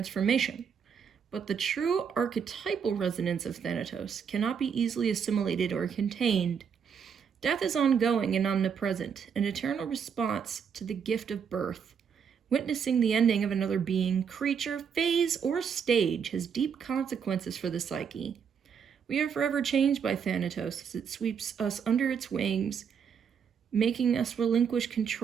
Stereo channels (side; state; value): left; quieter; 7.0 dB